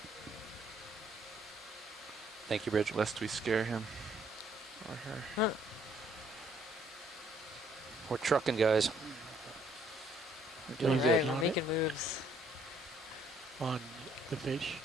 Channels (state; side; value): normal; both; correlation 0.64